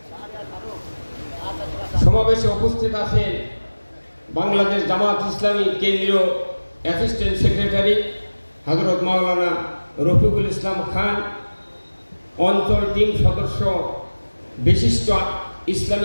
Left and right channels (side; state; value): both; inverted; correlation -1.00